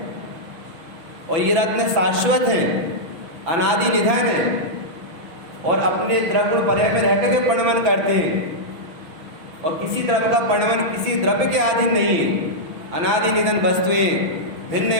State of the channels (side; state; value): left; late; 6.3 ms